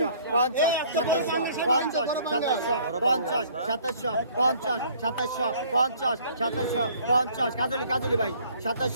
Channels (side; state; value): both; inverted; correlation -0.57